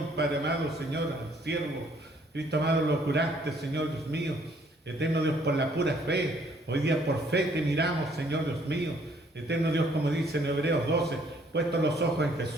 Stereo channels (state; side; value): normal; both; correlation 0.63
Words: Padre amado, Señor, al siervo. Cristo amado, lo curaste, Señor Dios mío. Eterno Dios, por la pura fe. Hoy día por fe te miramos, Señor Dios mío. Eterno Dios, como dice en Hebreos 12, puestos los ojos en